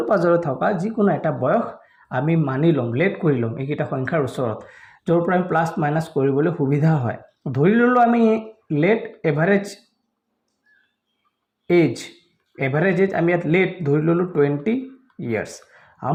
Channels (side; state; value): both; identical; correlation 1.00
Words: পাজৰে থকা যিকোনো এটা বয়স আমি মানি লম, লেট কৰি লম এইকেইটা সংখ্যাৰ ওচৰত, য'ৰ পৰা আমি প্লাছ মাইনাছ কৰিবলৈ সুবিধা হয়। ধৰি ললো আমি लेट एवरेज एज हम यहाँ लेट धर लो 20 ईयर्स।